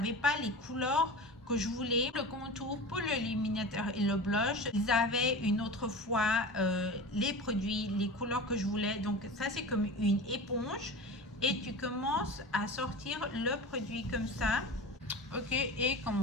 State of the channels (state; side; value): normal; both; correlation 0.32